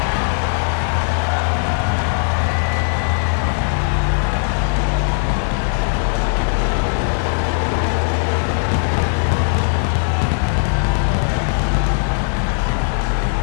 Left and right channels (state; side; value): silent; right; digital silence